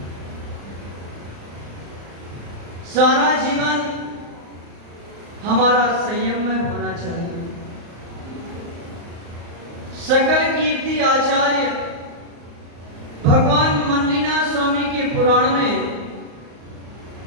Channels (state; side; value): late; left; 35 ms